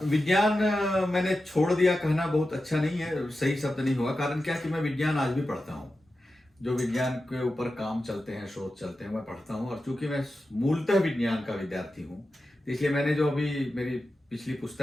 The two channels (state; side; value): normal; both; correlation 0.92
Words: विज्ञान मैंने छोड़ दिया कहना बहुत अच्छा नहीं है, सही शब्द नहीं होगा। कारण क्या कि मैं विज्ञान आज भी पढ़ता हूँ, जो विज्ञान के ऊपर काम चलते हैं, शोध चलते हैं, मैं पढ़ता हूँ। और चूंकि मैं मूलतः विज्ञान का विद्यार्थी हूँ, इसलिए मैंने जो अभी मेरी पिछली